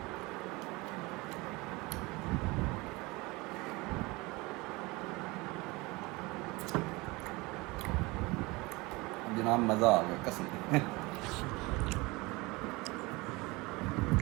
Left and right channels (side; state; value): left; quieter; 23.6 dB